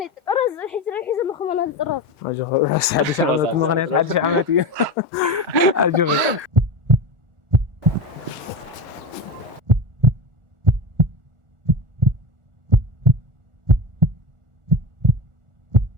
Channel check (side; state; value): left; late; 1.5 ms